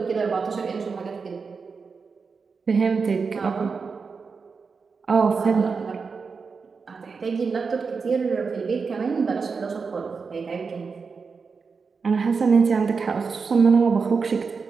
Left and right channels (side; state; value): left; quieter; 5.1 dB